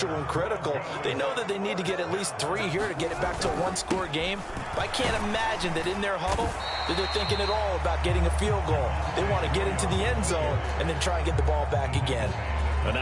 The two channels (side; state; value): both; identical; correlation 1.00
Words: and critical. They know that they need to get at least 3 here to get it back to a one-score game. But I can't imagine that in their huddle that they're thinking at all about getting a field goal. They want to get into the end zone and then try and get the ball back again. A